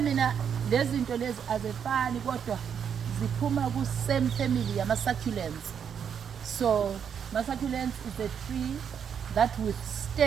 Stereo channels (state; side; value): quieter; left; 7.7 dB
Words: lezi zinto lezi azifani kodwa ziphuma ku same family yama succulents. So succulents is a tree that